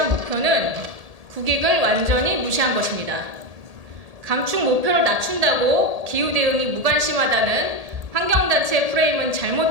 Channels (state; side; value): late; left; 1.8 ms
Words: 목표는 국익을 완전히 무시한 것입니다. 감축 목표를 낮춘다고 기후 대응이 무관심하다는 환경단체의 프레임은